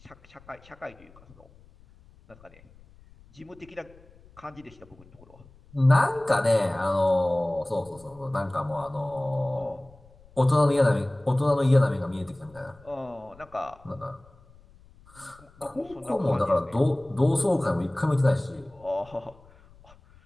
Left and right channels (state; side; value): noise; left; rumble, 26 dB below the sound